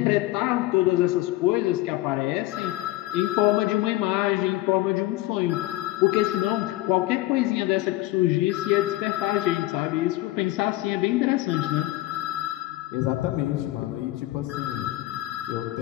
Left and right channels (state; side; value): quieter; right; 17.2 dB